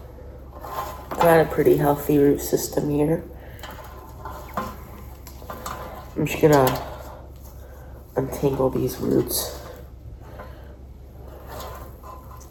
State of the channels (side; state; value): both; identical; correlation 1.00